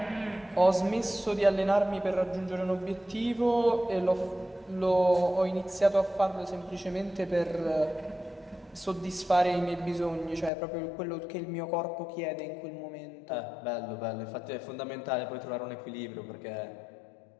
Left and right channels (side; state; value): right; drops out; at 10.5 s